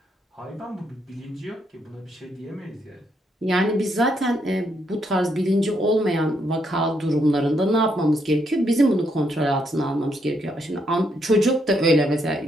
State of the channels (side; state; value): both; normal; correlation 0.76